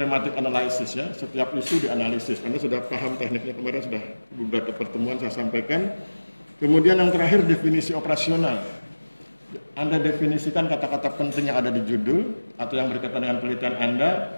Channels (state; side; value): inverted; both; correlation -1.00